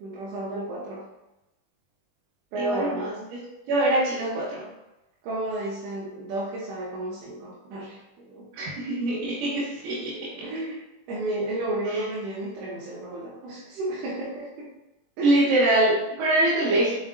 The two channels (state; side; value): late; left; 21 ms